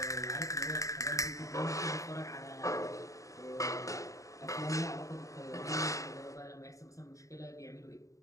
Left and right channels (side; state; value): right; late; 0.16 ms